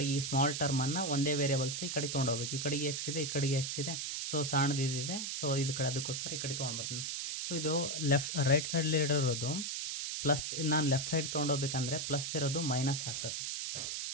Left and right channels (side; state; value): right; noise; hiss, 3 dB below the sound